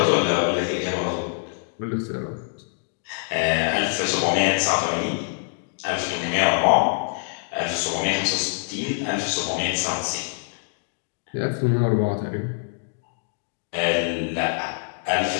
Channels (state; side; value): silent; right; digital silence